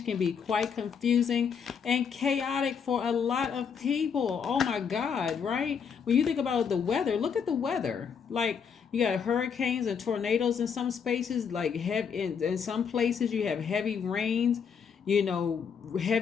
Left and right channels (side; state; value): right; quieter; 6.7 dB